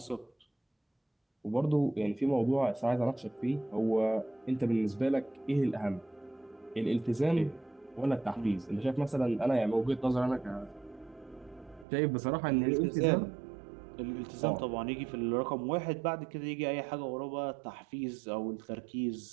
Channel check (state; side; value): drops out; left; at 11.9 s